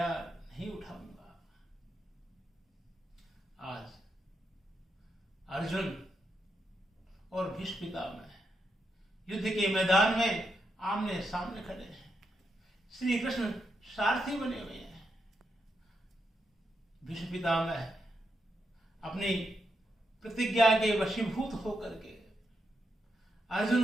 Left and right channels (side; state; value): both; normal; correlation 0.83